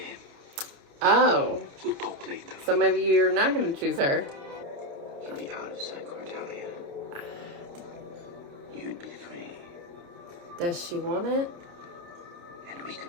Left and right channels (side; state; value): left; late; 29 ms